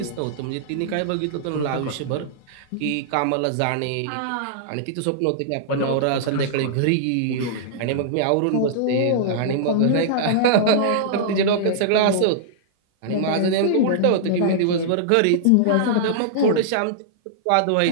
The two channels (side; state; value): both; different; correlation -0.02